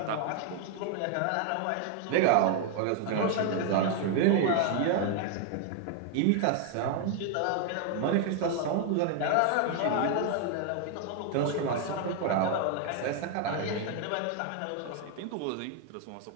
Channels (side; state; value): both; different; correlation 0.00